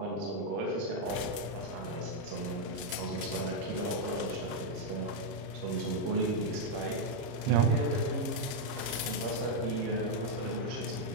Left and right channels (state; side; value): late; left; 30 ms